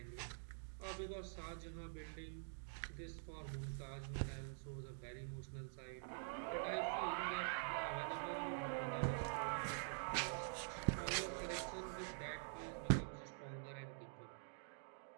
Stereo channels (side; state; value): left; silent; digital silence